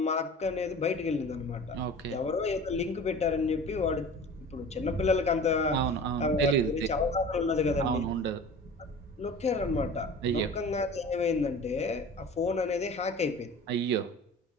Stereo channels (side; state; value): both; normal; correlation 0.39